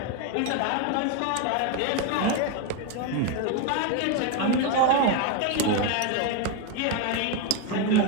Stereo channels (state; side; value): different; both; correlation 0.01